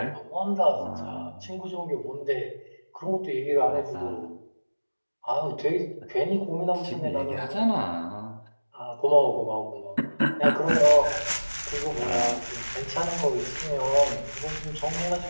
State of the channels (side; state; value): both; inverted; correlation -1.00